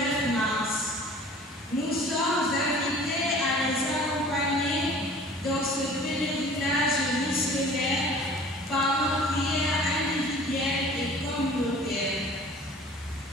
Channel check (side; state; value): both; normal; correlation 0.47